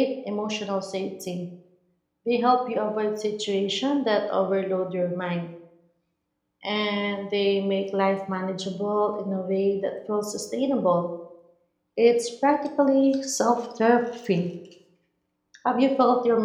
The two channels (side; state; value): both; identical; correlation 1.00